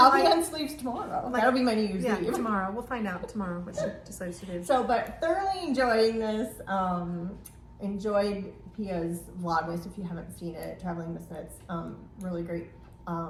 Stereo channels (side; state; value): both; identical; correlation 1.00